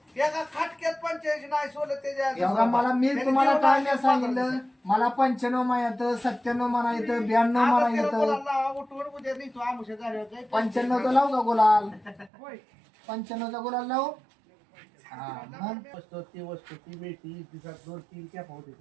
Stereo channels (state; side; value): drops out; left; at 12.3 s